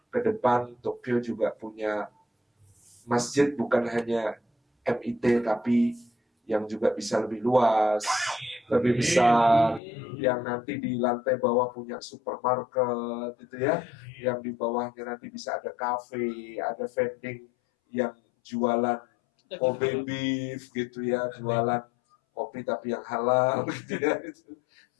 ke depan Tokyo juga punya masjid, bukan hanya MIT, tapi yang juga bisa lebih luas, lebih besar, yang nanti di lantai bawah punya supermarket, gitu ya, yang di bawahnya nanti bisa ada cafe, ada vending yang jualan Kobe beef gitu ya, jualan kopi tapi yang halal gitu ya,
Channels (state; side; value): drops out; right; at 9.8 s